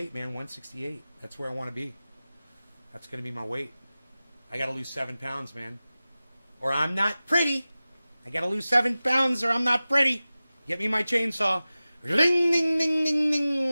man. 168. That's where I want to be. That's going to be my weight. I got to lose 7 pounds, man, or I'm not pretty. I got to lose 7 pounds, or I'm not pretty. Get me my chainsaw. Ding, ding, ding, ding, ding,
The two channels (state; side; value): inverted; both; correlation -0.97